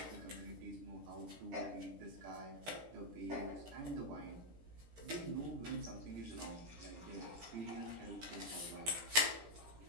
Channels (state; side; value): late; left; 17 ms